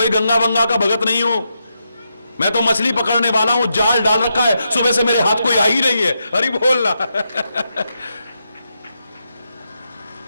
गंगा वंगा का भगत नहीं हूं, मैं तो मछली पकड़ने वाला हूं, जाल डाल रखा है, सुबह से मेरे हाथ कोई आ ही नहीं है। अरे बोलना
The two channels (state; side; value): inverted; both; correlation -0.84